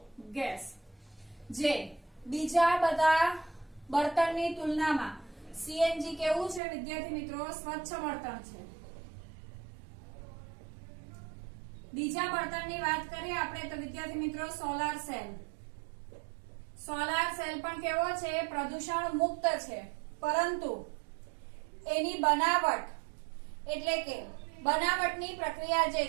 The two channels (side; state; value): left; drops out; at 6.6 s